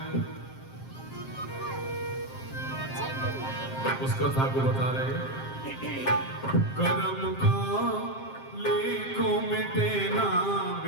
उस कथा को बता रहे। कर्म का लेखो मिटे ना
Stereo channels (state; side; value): late; right; 7.5 ms